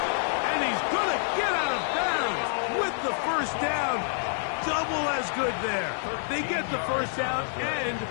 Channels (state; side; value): silent; right; digital silence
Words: And he's going to get out of bounds with the first down. Double as good there. They get the first down and